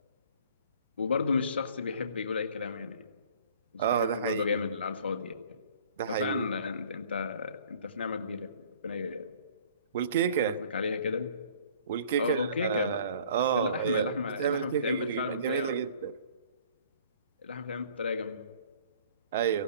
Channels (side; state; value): both; inverted; correlation -0.52